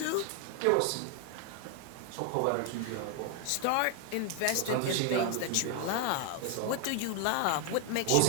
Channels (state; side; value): different; both; correlation 0.00